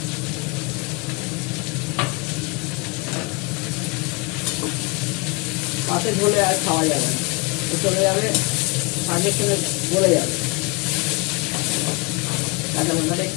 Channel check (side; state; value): right; quieter; 29.0 dB